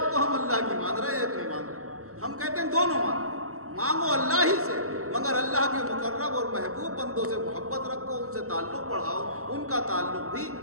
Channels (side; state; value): left; late; 0.64 ms